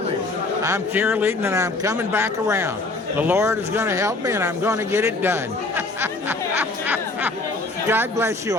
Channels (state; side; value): quieter; right; 3.2 dB